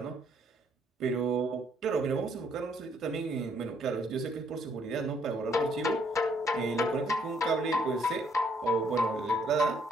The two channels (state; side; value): normal; both; correlation 0.68